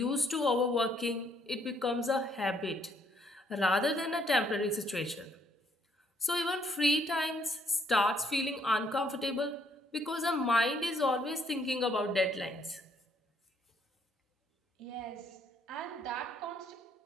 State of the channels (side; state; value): both; normal; correlation 0.68